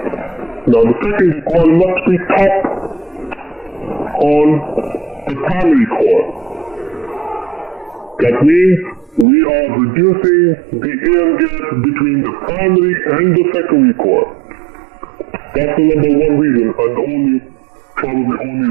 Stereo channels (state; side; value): drops out; left; at 9.2 s